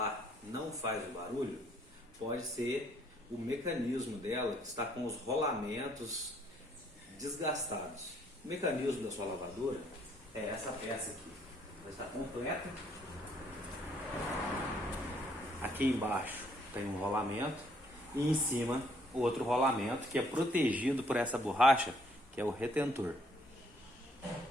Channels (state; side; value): normal; both; correlation 0.66